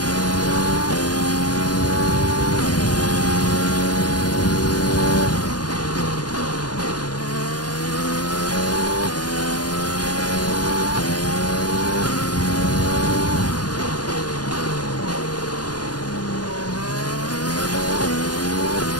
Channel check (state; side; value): late; right; 0.69 ms